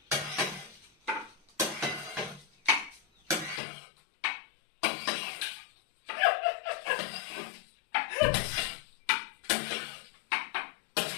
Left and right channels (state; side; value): drops out; right; at 3.6 s